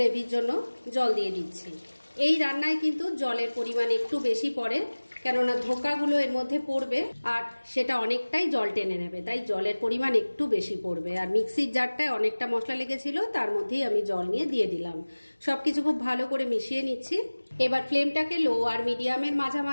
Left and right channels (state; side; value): inverted; both; correlation -1.00